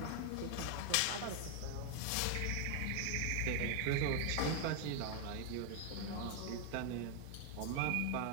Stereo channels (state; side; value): different; both; correlation 0.00